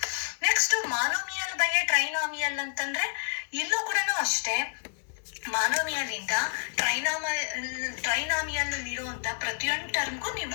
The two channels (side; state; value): right; silent; digital silence